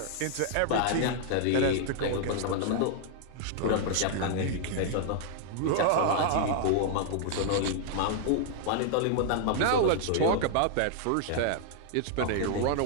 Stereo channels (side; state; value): both; different; correlation -0.01